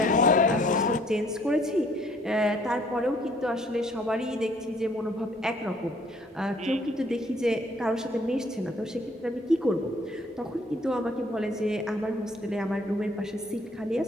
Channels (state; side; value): normal; both; correlation 0.61